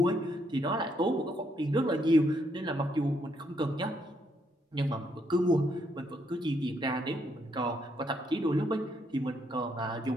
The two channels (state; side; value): normal; both; correlation 0.74